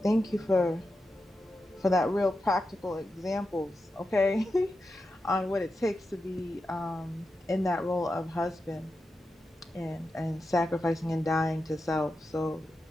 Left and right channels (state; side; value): normal; both; correlation 0.90